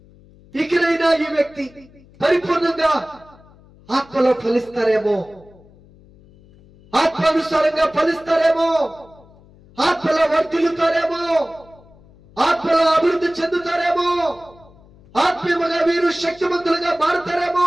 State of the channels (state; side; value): noise; left; hum, 26 dB below the sound